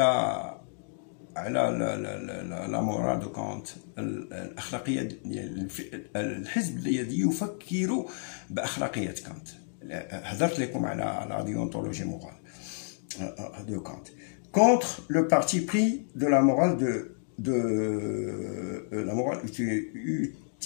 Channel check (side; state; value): right; silent; digital silence